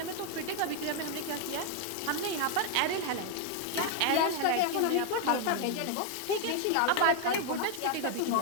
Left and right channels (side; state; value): both; different; correlation 0.00